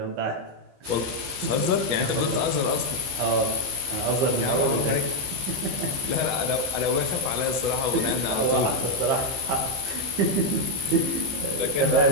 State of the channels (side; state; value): left; late; 15 ms